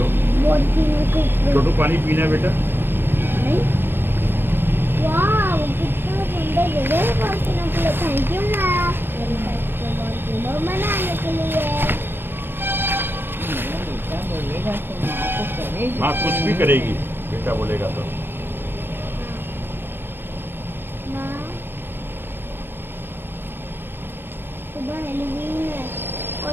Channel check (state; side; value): late; left; 0.099 ms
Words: छोटू पानी पीना है बेटा। वाह कितना सुंदर जगह है पहुंचने के लिए। थैंक यू माँ बनाने के लिए। बेटा बोलेगा तो माँ को करेगी। माँ कुछ भी करेगी, बेटा बोलेगा तो। माँ सुबह हेलोवीन है और